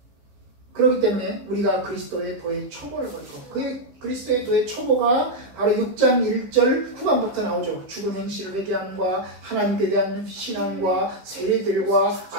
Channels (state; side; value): late; left; 15 ms